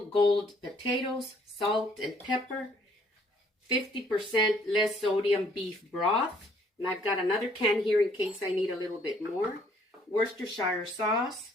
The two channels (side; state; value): both; normal; correlation 0.63